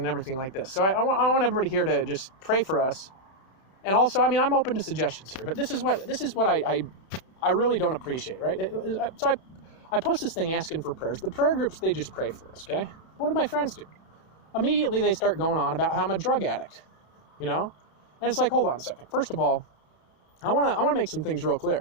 everything like this. So I want everybody here to just pray for us. And also, I'm open to suggestions here, but this is what I really don't appreciate, right? So I post this thing asking for prayers. The prayer groups, they just pray for us, okay? What do my friends do? Immediately they start going on about how I'm a drug addict, And it's like, hold on a second. First of all, I want to make some things real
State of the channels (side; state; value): right; late; 31 ms